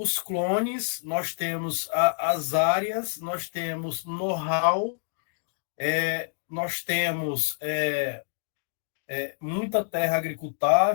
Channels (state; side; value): silent; right; digital silence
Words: clones, nós temos as áreas, nós temos know-how, nós temos muita terra